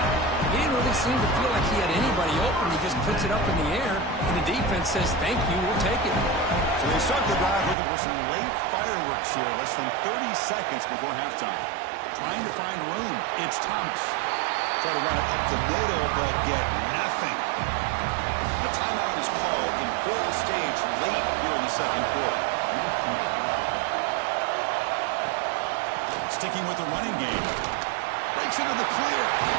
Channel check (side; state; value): left; drops out; at 7.8 s